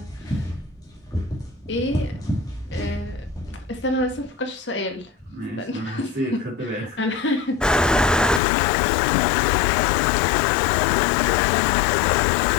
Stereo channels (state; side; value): drops out; right; at 8.4 s